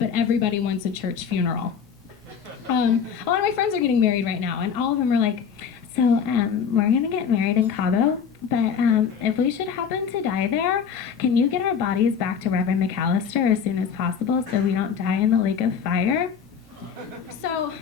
everybody wants a church funeral. A lot of my friends are getting married right now, and all of them are like, so we're gonna get married in Cabo, but if we should happen to die there, can you get our bodies back to Reverend McAllister as soon as possible so we don't die in the lake of fire? So,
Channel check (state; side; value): quieter; right; 7.0 dB